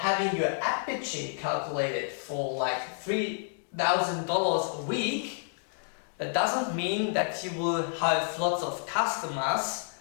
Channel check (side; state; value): right; silent; digital silence